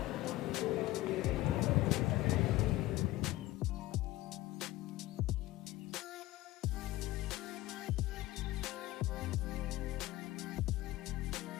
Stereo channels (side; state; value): right; quieter; 17.3 dB